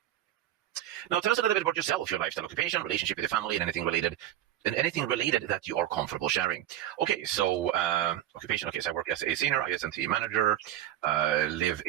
Now, tell us a little bit about yourself, your lifestyle, occupation, relationship with your family, and anything related that you are comfortable sharing. Okay, so occupation. Okay, so I work as a senior IS&T manager, live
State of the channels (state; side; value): quieter; left; 12.4 dB